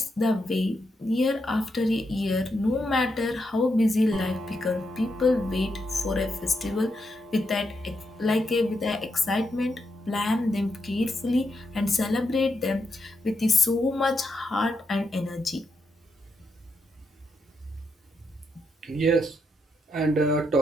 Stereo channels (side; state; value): both; normal; correlation 0.82